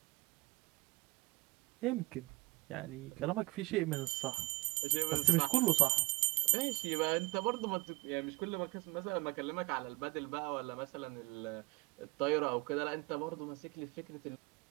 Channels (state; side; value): quieter; left; 24.2 dB